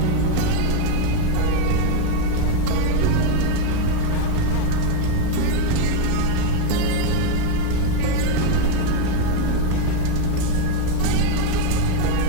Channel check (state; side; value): different; both; correlation 0.02